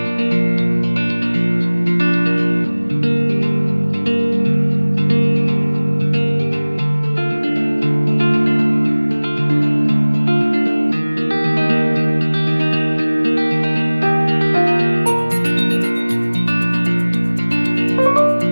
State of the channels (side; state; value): both; inverted; correlation -1.00